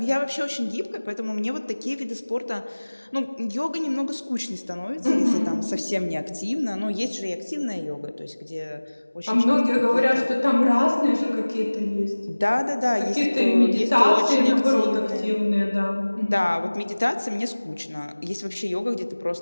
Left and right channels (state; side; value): inverted; both; correlation -1.00